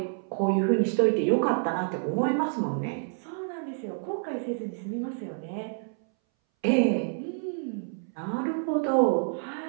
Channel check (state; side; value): silent; left; 59 dB below the other